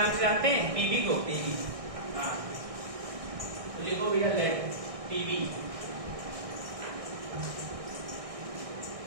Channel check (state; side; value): late; left; 1.6 ms